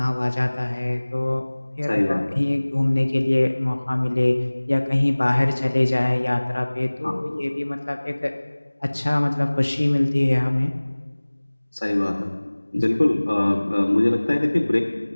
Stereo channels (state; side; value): inverted; both; correlation -1.00